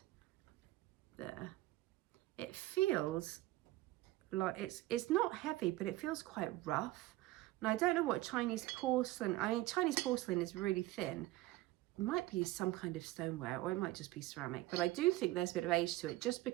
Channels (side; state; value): left; quieter; 17.5 dB